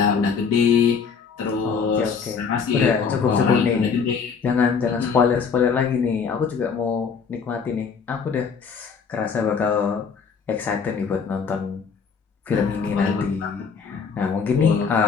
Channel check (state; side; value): quieter; right; 5.9 dB